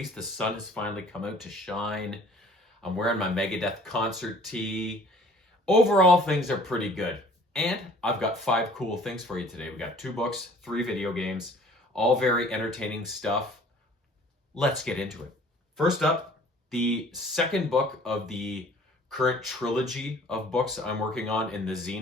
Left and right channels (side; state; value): both; normal; correlation 0.52